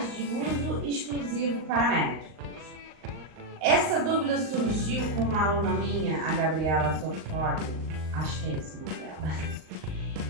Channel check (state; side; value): late; left; 38 ms